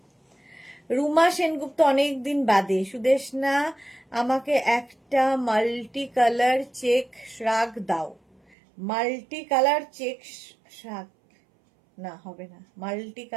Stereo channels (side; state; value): left; drops out; at 8.6 s